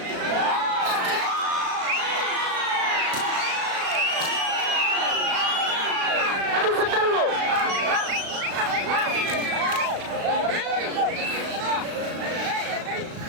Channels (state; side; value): late; left; 36 ms